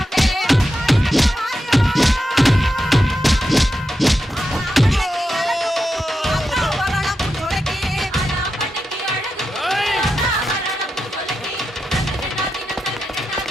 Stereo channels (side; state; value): both; normal; correlation 0.88